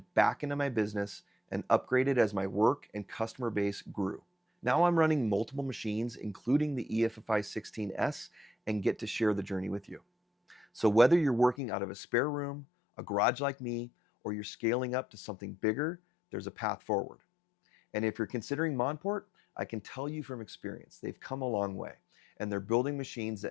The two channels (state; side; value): drops out; right; at 11.6 s